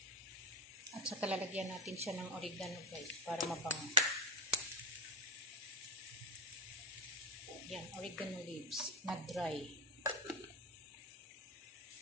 At saka lalagyan natin siya ng oregano guys para mabango. Yan, oregano leaves na dry.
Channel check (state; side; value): normal; both; correlation 0.12